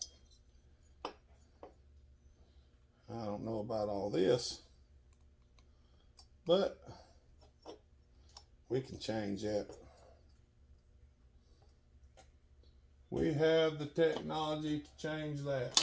I don't know about all this, but we can change that. We have the technology to change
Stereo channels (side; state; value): both; identical; correlation 1.00